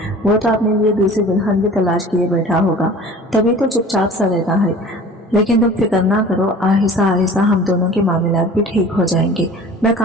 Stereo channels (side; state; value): both; normal; correlation 0.43